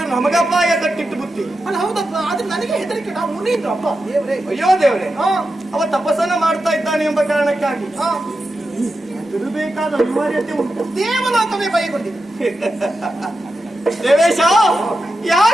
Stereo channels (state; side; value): normal; both; correlation 0.90